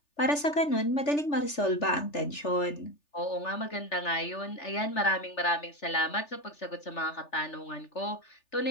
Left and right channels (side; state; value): right; late; 3.4 ms